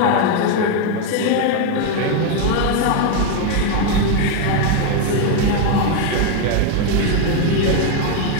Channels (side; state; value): both; different; correlation 0.01